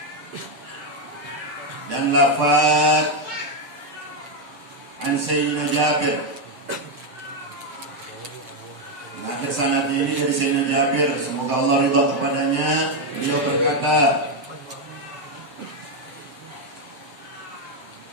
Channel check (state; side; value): late; left; 7.7 ms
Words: dan lafaz an Sayyidina Jabir. Akhir sanad ini dari Sayyidina Jabir, semoga Allah ridha kepadanya. Beliau berkata,